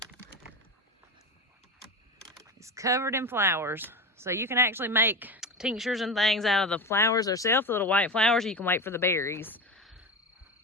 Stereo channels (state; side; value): normal; both; correlation 0.23